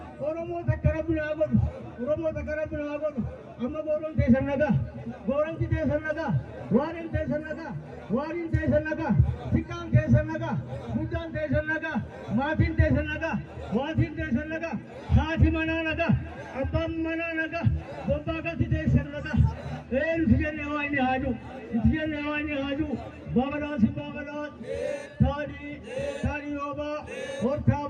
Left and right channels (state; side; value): identical; both; correlation 1.00